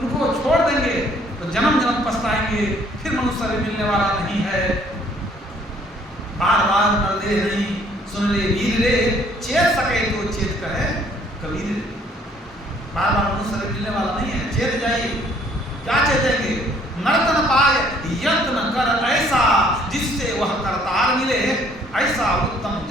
छोड़ देंगे तो जन्म जन्म पछताएंगे, फिर मनुष्य शरीर मिलने वाला नहीं है। बार बार नरदेह नहीं, सुन ले वीर रे, चेत सके तो चेत कहे कबीर। बार बार मनुष्य शरीर मिलने वाला नहीं है, चेत जाइए। क्या चेतेंगे? नर्तन पाए यत्न कर ऐसा, जिससे वह करतार मिले, ऐसा उत्तम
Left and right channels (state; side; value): normal; both; correlation 0.61